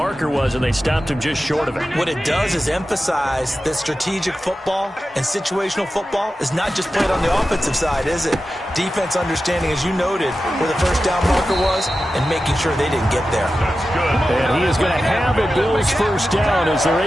was, and they stopped him just short of it. What it does is emphasize that strategic football and situational football is not just played on the offensive side, is it? Defense understanding, as you noted, where the first down marker was and making sure they didn't get there. That's good. And he is going to have a Bills first down as they're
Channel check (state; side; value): normal; both; correlation 0.93